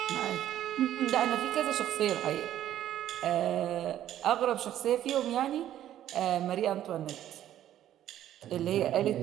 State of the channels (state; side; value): quieter; left; 11.9 dB